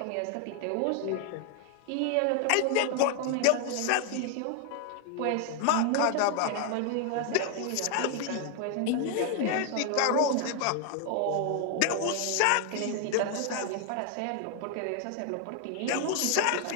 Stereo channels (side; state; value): both; different; correlation 0.00